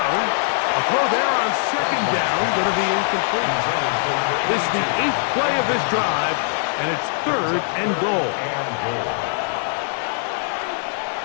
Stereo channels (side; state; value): right; silent; digital silence